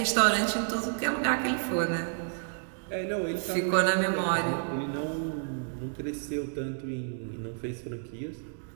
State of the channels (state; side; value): silent; left; digital silence